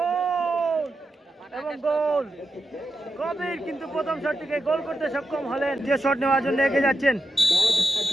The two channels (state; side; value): normal; both; correlation 0.87